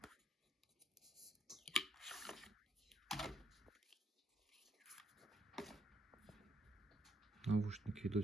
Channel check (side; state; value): both; normal; correlation 0.73